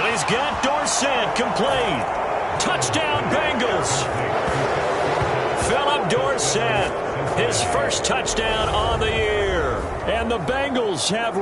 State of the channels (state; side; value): identical; both; correlation 1.00